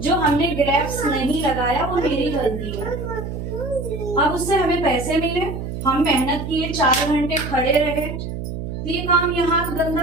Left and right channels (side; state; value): right; noise; hum, 6 dB below the sound